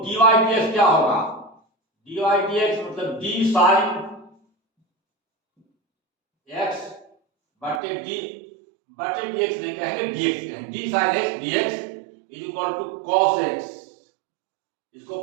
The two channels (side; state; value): left; drops out; at 7.8 s